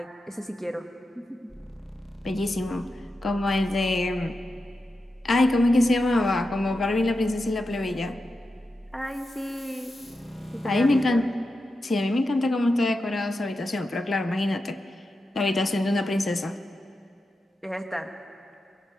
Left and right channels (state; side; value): normal; both; correlation 0.89